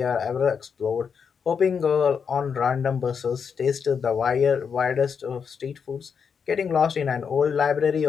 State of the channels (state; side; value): quieter; right; 6.5 dB